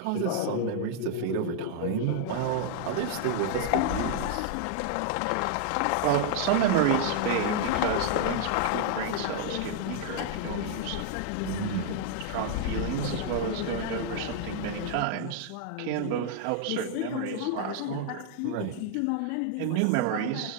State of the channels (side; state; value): both; different; correlation -0.01